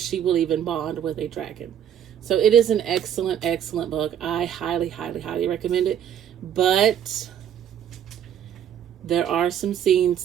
will even bond with a dragon. So it is an excellent, excellent book. I highly, highly, highly recommend it. But there are some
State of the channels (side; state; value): left; quieter; 9.5 dB